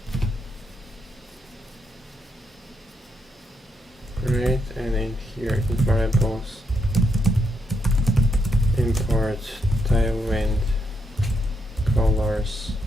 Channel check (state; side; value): normal; both; correlation 0.79